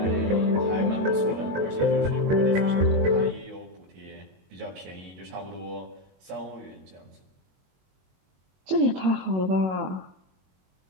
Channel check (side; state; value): left; late; 22 ms